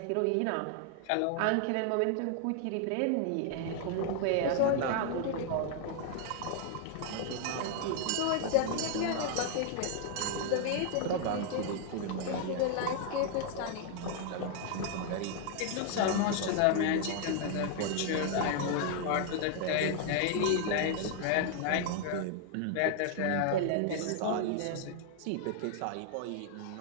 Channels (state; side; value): different; both; correlation 0.00